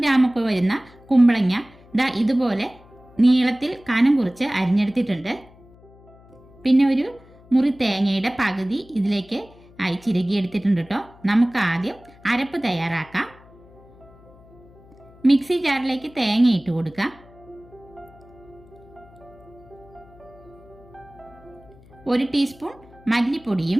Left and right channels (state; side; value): noise; left; hum, 25 dB below the sound